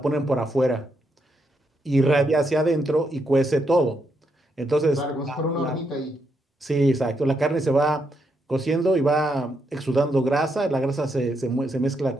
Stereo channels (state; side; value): normal; both; correlation 0.80